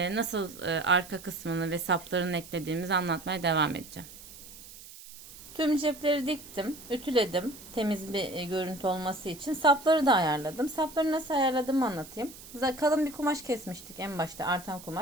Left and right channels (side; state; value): right; noise; hiss, 17 dB below the sound